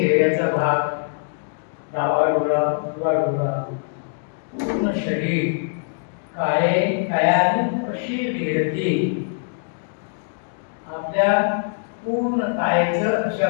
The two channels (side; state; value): right; silent; digital silence